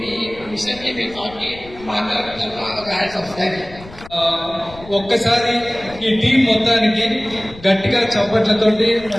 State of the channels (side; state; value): left; noise; rumble, 19 dB below the sound